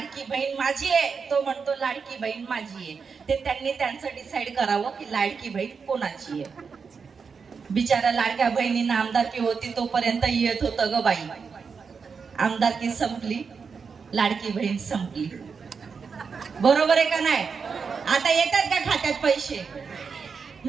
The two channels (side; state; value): left; quieter; 5.6 dB